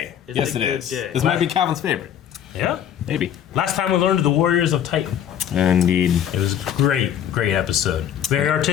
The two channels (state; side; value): quieter; right; 9.7 dB